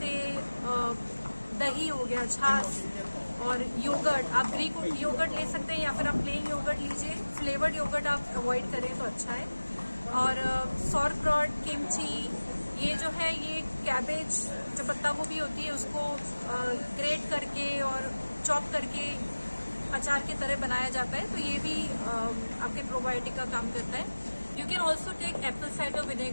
दही हो गया, छाछ और योगर्ट। आप ग्रीक योगर्ट ले सकते हैं या फिर आप प्लेन योगर्ट लीजिए। फ्लेवर्ड योगर्ट आप अवॉइड करें तो अच्छा है। और सॉरक्रॉट, किमची, ये जो है ये कैबेज, जो पत्ता गोभी होती है उसको ग्रेट करके और चॉप करके अचार की तरह बनाया जाता है, तो ये भी आपके प्रोबायोटिक का काम करता है। You can also take apple cider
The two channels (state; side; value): inverted; both; correlation -1.00